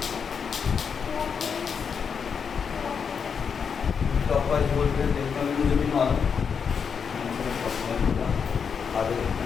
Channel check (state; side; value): quieter; right; 6.4 dB